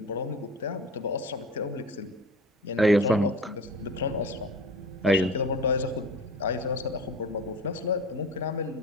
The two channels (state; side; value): normal; both; correlation 0.37